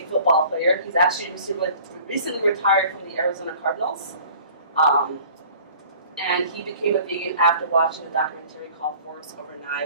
football player. He's actually recently retired from the Arizona Cardinals. And he became a vegan after watching a documentary called Forks Over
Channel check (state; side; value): inverted; both; correlation -0.49